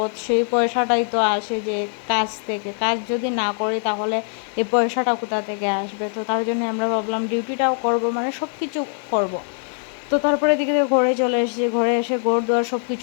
সেই পয়সাটাই তো আসে যে কাজ থেকে। কাজ যদি না করি তাহলে এই পয়সাটা কোথা থেকে আসবে? তো তার জন্য আমরা ভাবলাম ডিউটিটাও করব, মানে সব কিছু করব। তো তারপরে এদিকে ঘরে চলে এসেছি, ঘরে এসে ঘর দুয়ার সব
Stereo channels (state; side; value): silent; right; 56 dB below the other